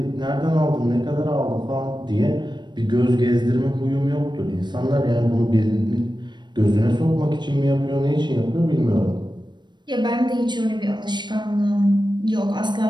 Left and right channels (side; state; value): left; late; 0.22 ms